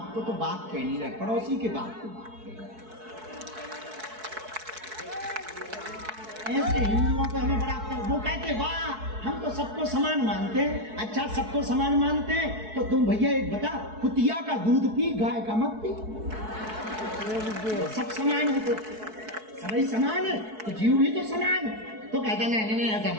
को तो बाप कह नहीं रहे, पड़ोसी के बाप को बाप कह रहे। ऐसे हिंदुओं को हमें बड़ा, वो कहते वाह हम तो सबको समान मानते हैं। अच्छा सबको समान मानते हैं तो तुम भैया एक बता, कुतिया का दूध पी गाय का मत पी। सब समान है तो सभी समान है, तो जीव भी तो समान है। तो कहता नहीं ऐसा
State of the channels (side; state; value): left; late; 4.6 ms